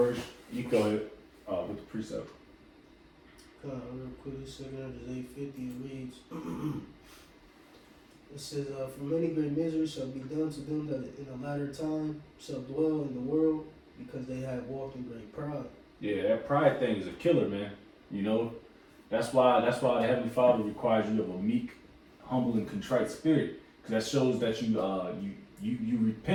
You go ahead with the precept. Real quick, 2 Esdras 8:50 it reads. It says, for many great miseries shall be done to them that in the latter time shall dwell in the world, because they have walked in great pride. Yeah, that pride thing is a killer, man. You know, that's why the Heavenly Father requires you of a meek, humble, and contrite spirit, because that shows that you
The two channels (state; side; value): identical; both; correlation 1.00